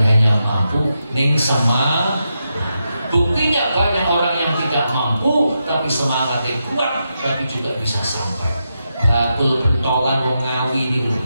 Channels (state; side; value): inverted; both; correlation -0.85